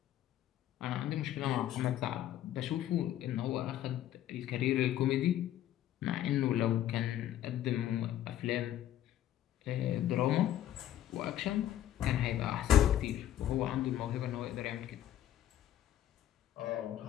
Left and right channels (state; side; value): quieter; right; 11.9 dB